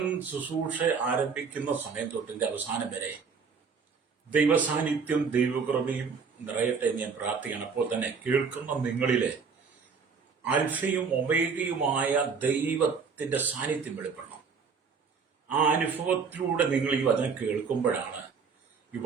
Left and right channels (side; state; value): left; quieter; 5.6 dB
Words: ശുശ്രൂഷ ആരംഭിക്കുന്ന സമയം തൊട്ടിന്റെ അവസാനം വരെ ദൈവസാന്നിധ്യം ദൈവകൃപയും നിറയട്ടെ എന്ന് ഞാൻ പ്രാർത്ഥിക്കണം. അപ്പോൾ തന്നെ കേൾക്കുന്ന നിങ്ങളിലെ അൽഫയും ഒമേഗയുമായ ദൈവത്തിന്റെ സാന്നിധ്യം വെളിപ്പെടണം. ആ അനുഭവത്തിലൂടെ നിങ്ങൾ ഈ വചനം കേൾക്കുമ്പോഴാണ് ഈ